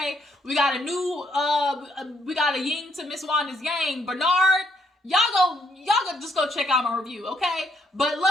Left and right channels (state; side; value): normal; both; correlation 0.72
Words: We got a yin to Miss Wanda's yang. Bernard, y'all just go check out my review, okay? But